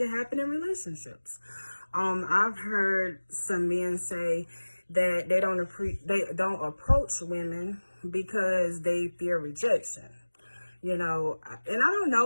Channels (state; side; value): inverted; both; correlation -1.00